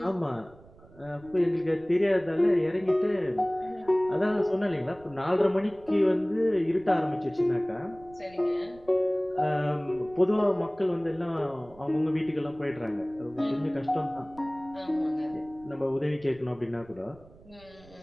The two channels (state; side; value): noise; right; rumble, 24 dB below the sound